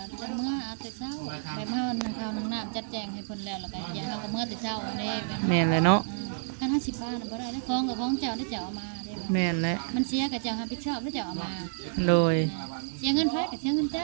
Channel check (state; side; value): silent; left; digital silence